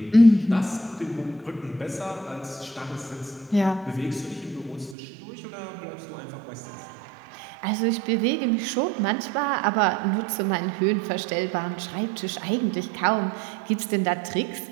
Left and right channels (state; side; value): drops out; left; at 5.0 s